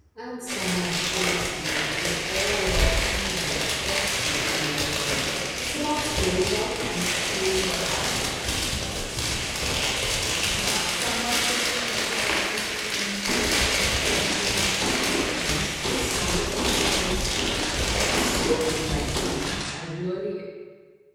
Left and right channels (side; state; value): both; identical; correlation 1.00